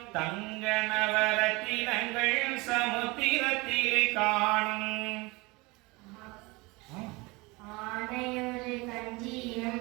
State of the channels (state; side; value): quieter; left; 24.6 dB